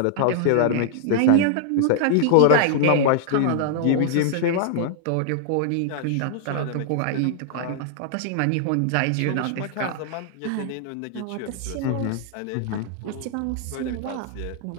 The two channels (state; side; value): different; both; correlation 0.00